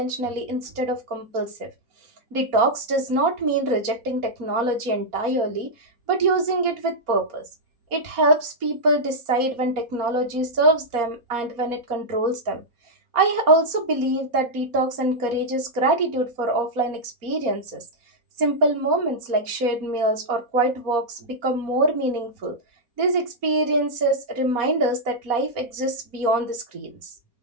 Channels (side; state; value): left; late; 4.2 ms